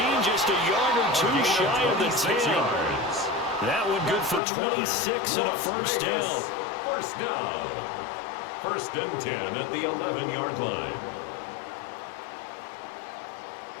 just a yard or two shy of the 10. That one good for 26 and a first down. First down. First and 10 at the 11-yard line.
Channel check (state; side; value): drops out; right; at 4.4 s